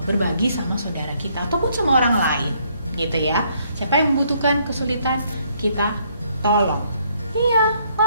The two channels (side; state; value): both; inverted; correlation -0.69